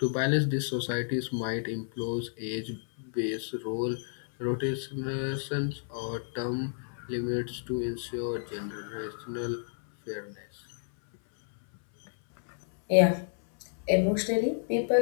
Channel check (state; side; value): silent; right; 57 dB below the other